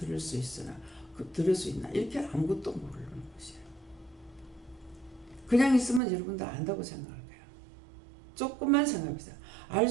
수 있으나 들을 수 있나 이렇게 아무것도 모르는 것이에요. 그냥 있으면 여러분 다 안다고 생각할 거예요. 조금만 생각해보세요. 알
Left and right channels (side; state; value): left; drops out; at 6.0 s